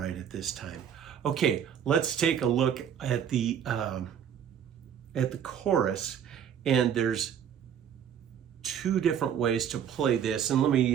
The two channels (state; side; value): quieter; left; 8.8 dB